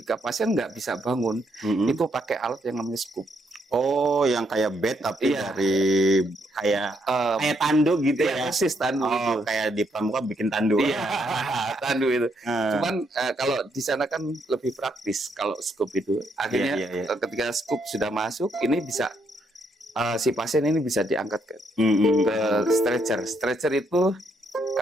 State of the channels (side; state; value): both; normal; correlation 0.75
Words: pasien nggak bisa bangun, itu pakai alat yang namanya skop. Oh, yang kayak bed tapi dari kayak tandu gitu ya? Persis tandu. Oh, kayak di pramuka bikin tandu. Iya, tandu itu. Cuman kalau di sana kan lebih praktis kalau scoop itu. Akhirnya ketika scoop sudah masuk, ini bisa si pasien ini bisa diangkat ke stretcher. Stretcher itu